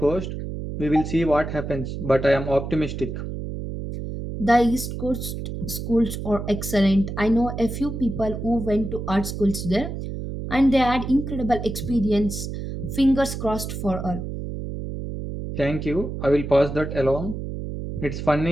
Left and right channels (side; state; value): right; noise; hum, 6 dB below the sound